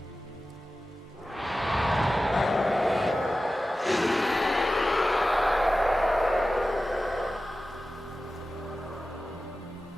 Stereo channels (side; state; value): both; normal; correlation 0.95